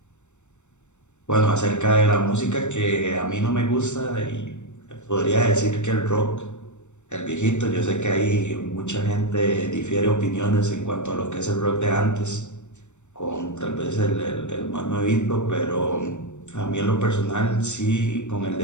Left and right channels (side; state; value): right; late; 0.84 ms